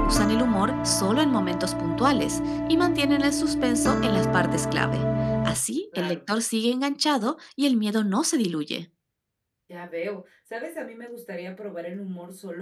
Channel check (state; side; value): identical; both; correlation 1.00